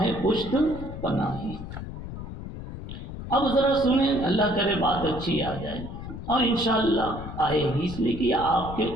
پشت پناہی۔ اب ذرا سنیں، اللہ کرے بات اچھی آ جائے، اور انشاءاللہ آئے گی، اس لیے کہ آپ کے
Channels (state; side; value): noise; left; rumble, 9 dB below the sound